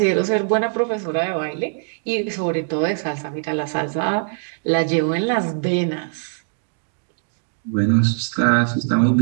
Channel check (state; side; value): silent; left; digital silence